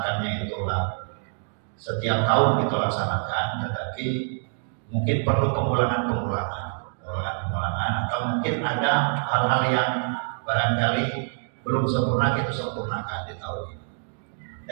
itulah setiap tahun kita laksanakan, tetapi mungkin perlu pengulangan atau mungkin ada hal-hal yang barangkali belum sempurna kita sempurnakan di tahun ini.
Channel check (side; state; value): left; silent; digital silence